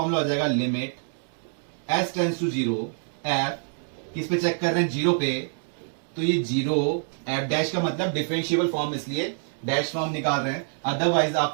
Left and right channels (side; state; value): left; silent; digital silence